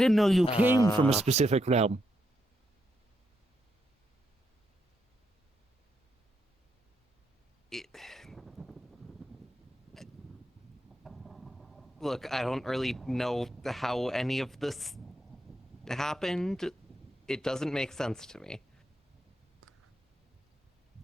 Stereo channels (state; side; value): normal; both; correlation 0.81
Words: know you came from a specific realm. Look, I don't really know how any of this happened. It doesn't make sense to me.